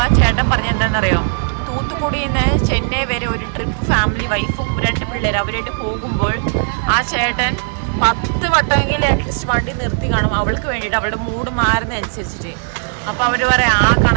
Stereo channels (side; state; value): left; silent; digital silence